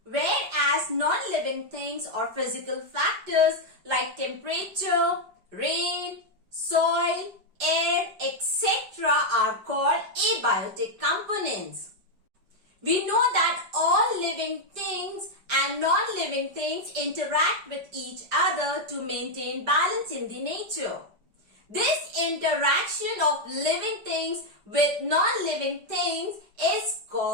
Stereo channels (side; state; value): left; late; 5.0 ms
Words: Whereas non-living things or physical factors like temperature, rain, soil, air, etc. are called abiotic components. We know that all living things and non-living things interact with each other to maintain balance in the nature. This interaction of living things with non-living things is